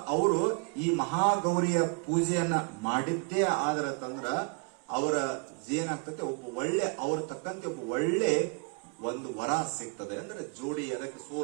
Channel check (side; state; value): left; quieter; 35.8 dB